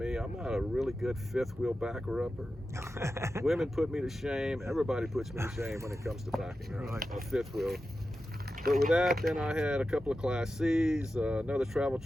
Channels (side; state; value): both; normal; correlation 0.92